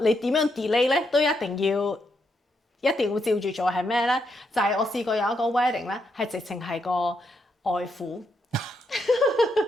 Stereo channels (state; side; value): normal; both; correlation 0.79